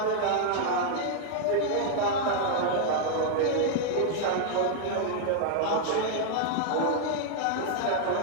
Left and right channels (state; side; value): different; both; correlation 0.00